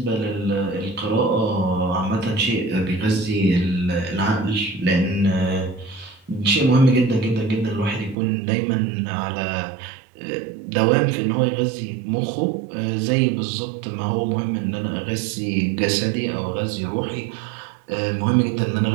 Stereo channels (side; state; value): left; drops out; at 8.2 s